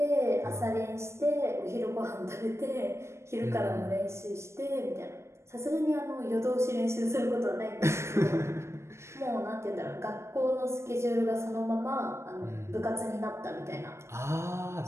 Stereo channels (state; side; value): late; left; 0.13 ms